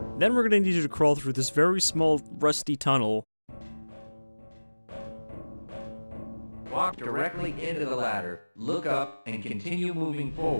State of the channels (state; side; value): inverted; both; correlation -1.00